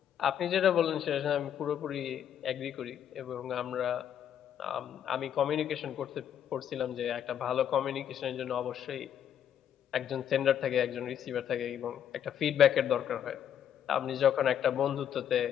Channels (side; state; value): right; quieter; 9.5 dB